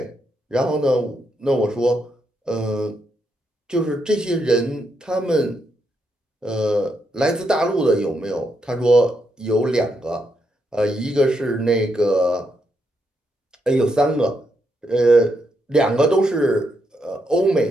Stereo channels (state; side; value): normal; both; correlation 0.80